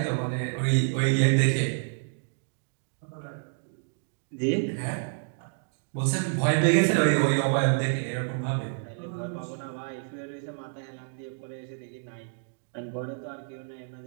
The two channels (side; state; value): left; silent; digital silence